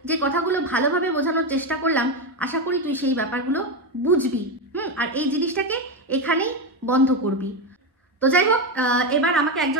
যে কথাগুলো ভালোভাবে বোঝানোর চেষ্টা করলাম, আশা করি তুই সেই ব্যাপারগুলো বুঝবি, আর এই জিনিসটাকে এখানেই বন্ধ করবি। তো যাই হোক, এবার আমাকে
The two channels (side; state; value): both; normal; correlation 0.12